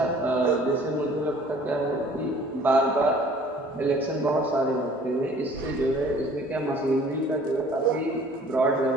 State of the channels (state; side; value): normal; both; correlation 0.53